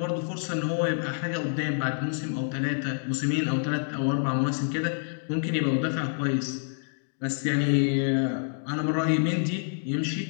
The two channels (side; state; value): right; silent; digital silence